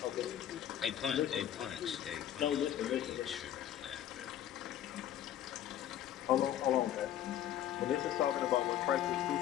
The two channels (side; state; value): right; quieter; 11.2 dB